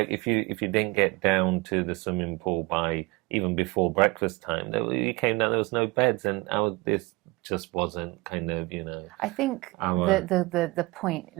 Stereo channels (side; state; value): left; quieter; 23.8 dB